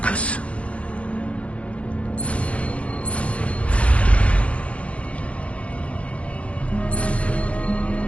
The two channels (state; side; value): late; right; 0.063 ms